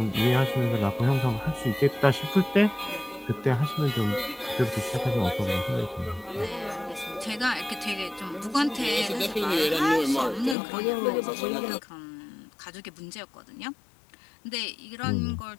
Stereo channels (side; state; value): right; drops out; at 10.6 s